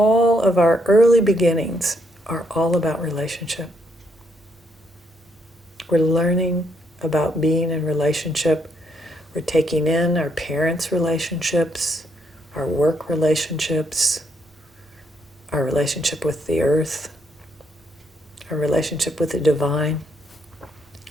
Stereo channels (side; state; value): both; normal; correlation 0.74